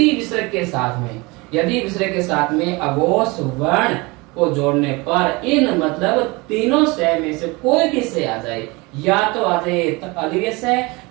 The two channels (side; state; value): left; quieter; 25.1 dB